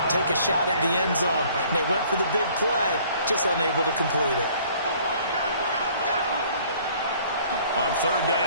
Take a shot at the end zone. And they went for the big play, just unable to complete it. On third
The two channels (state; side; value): inverted; both; correlation -0.56